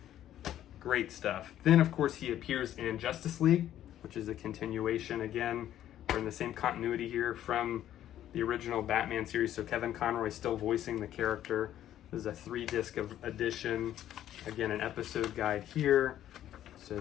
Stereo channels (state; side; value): quieter; right; 11.9 dB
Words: Great stuff. Then, of course, he appears in Justice League, which is a continuation. Again, we're in the same continuity here from the original Batman series, so Kevin Conroy is still voicing the character. This is a 3-disc edition. Again, an episode guide here so